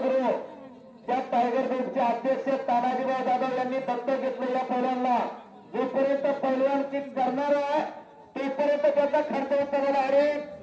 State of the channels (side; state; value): both; identical; correlation 1.00